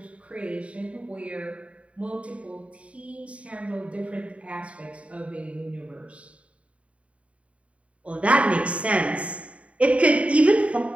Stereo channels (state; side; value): late; left; 0.064 ms